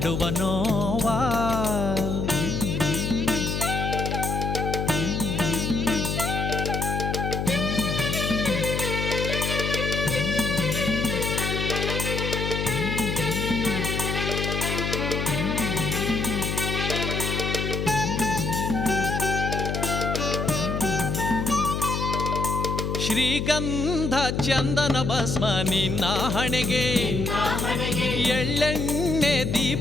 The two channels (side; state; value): left; noise; hum, 1 dB below the sound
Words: ನೋವಾ ಶ್ರೀಗಂಧ ಚಂದನ ಭಸ್ಮ ನಿನ್ನ ಹಣೆಗೆ ಎಳ್ಳೆಣ್ಣೆ